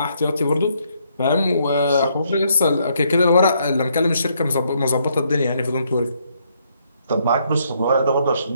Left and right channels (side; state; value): both; inverted; correlation -0.72